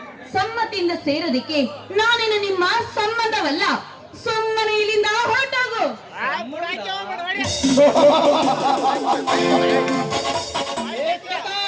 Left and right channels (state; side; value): identical; both; correlation 1.00